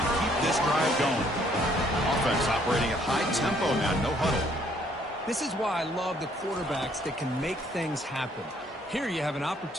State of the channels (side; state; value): both; normal; correlation 0.65